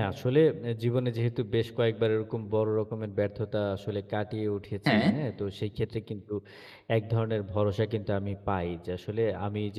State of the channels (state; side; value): identical; both; correlation 1.00